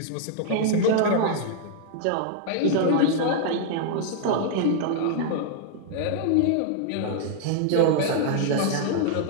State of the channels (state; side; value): different; both; correlation 0.00